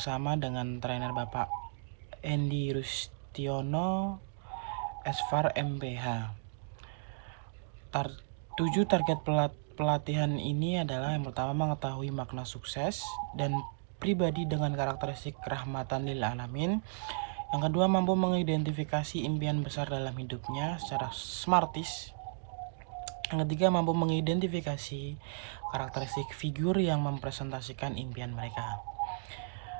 dengan trainer Bapak Endi Rustiono, Esfar MPH. 7 target pelatihan ini adalah: yang pertama, mengetahui makna sukses dan pribadi dengan karakteristik rahmatan lil alamin. Yang kedua, mampu mengidentifikasi impian besar dalam hidupnya secara smartis. Yang ketiga, mampu mengidentifikasi karakteristik figur yang mempresentasikan impian mereka.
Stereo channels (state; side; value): silent; left; digital silence